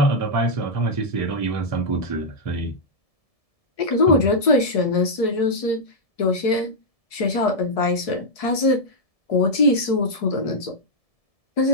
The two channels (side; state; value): right; late; 1.7 ms